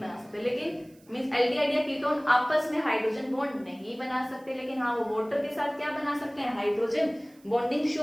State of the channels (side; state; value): right; noise; hiss, 30 dB below the sound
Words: सकते, लेकिन मींस एल्डिहाइड या कीटोन आपस में हाइड्रोजन बॉन्ड नहीं बना सकते, लेकिन हाँ वो वाटर के साथ क्या बना सकते हैं, हाइड्रोजन बॉन्डिंग